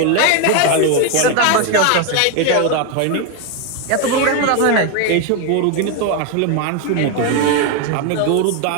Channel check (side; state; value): both; different; correlation 0.02